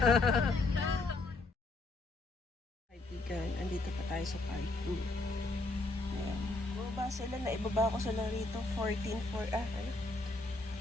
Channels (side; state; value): right; quieter; 3.1 dB